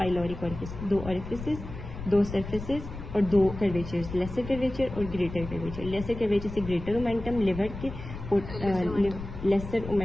ओरिफिस। दो ओरिफिसेस, दो सरफेसेस और दो कर्वेचर्स, लेसर कर्वेचर और ग्रेटर कर्वेचर। लेसर कर्वेचर से ग्रेटर ओमेंटम लिवर के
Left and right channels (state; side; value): noise; left; rumble, 10 dB below the sound